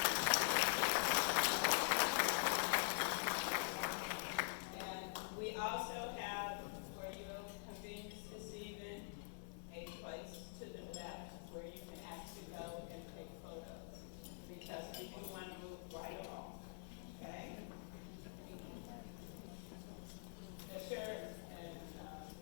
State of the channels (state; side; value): silent; right; digital silence